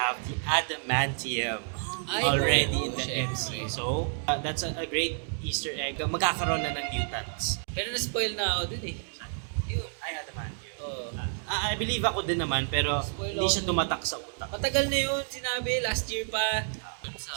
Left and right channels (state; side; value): silent; left; 58 dB below the other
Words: the adamantium already in the syempre. MCU. So, that's a great Easter egg. Magkakaroon na ng mutants. Pero na-spoil na ako dun Yun. Ay, adamantium. Oo. I believe ako din naman, pero hindi siya tumatak sa utak. Matagal na yun, sinabi, last year pa.